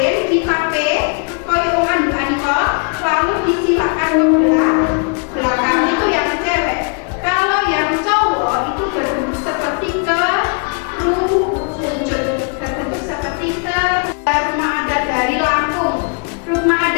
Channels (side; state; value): right; quieter; 38.5 dB